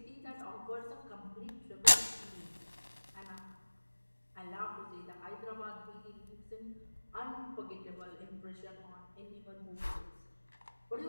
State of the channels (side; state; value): both; inverted; correlation -1.00